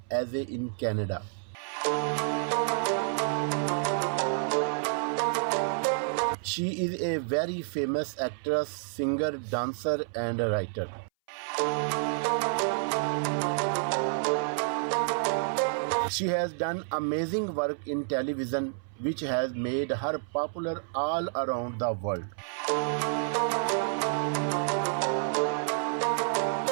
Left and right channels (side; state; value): left; silent; 58 dB below the other